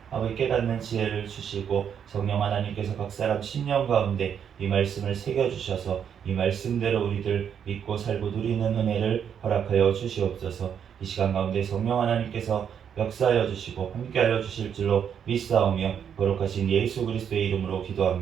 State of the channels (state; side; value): quieter; left; 8.1 dB